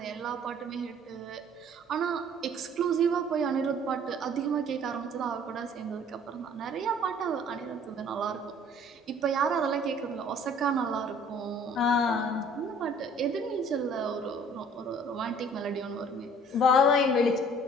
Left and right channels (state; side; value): normal; both; correlation 0.54